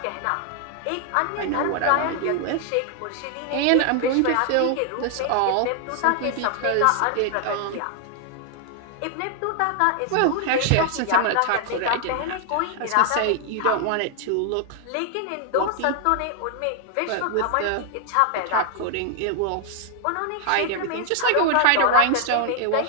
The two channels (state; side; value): different; both; correlation 0.00